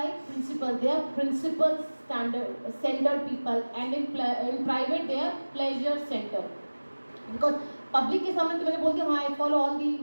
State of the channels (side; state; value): both; inverted; correlation -1.00